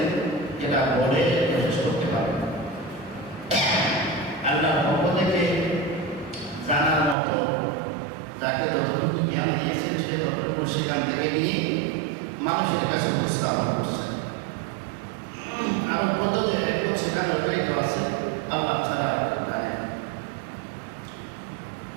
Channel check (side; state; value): left; drops out; at 7.2 s